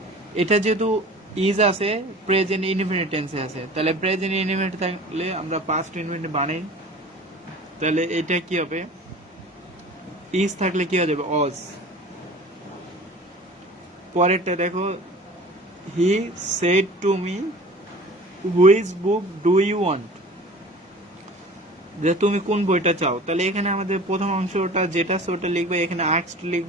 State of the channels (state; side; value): normal; both; correlation 0.42